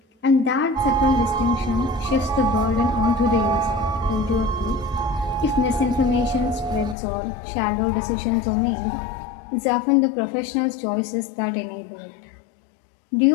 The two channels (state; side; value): drops out; right; at 7.0 s